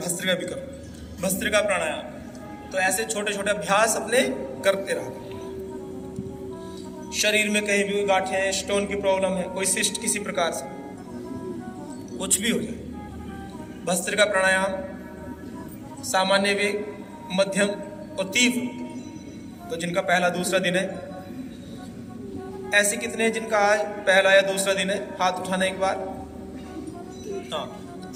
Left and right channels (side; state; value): both; identical; correlation 1.00